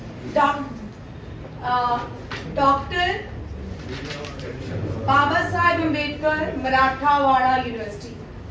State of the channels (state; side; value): identical; both; correlation 1.00